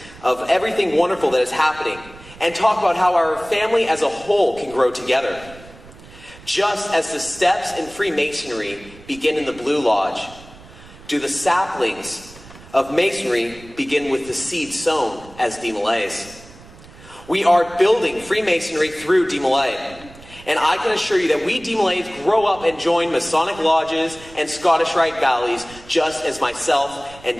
of everything wonderful that is happening and talk about how our family as a whole can grow together. Just as the steps in Freemasonry begin in the Blue Lodge, do the saplings of Masonry begin with the seed sown as DeMolays. We are building Freemasonry through DeMolay. And I can assure you that we DeMolays grow up and join Masonic lodges and Scottish Rite valleys just as myself and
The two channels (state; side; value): noise; right; rumble, 20 dB below the sound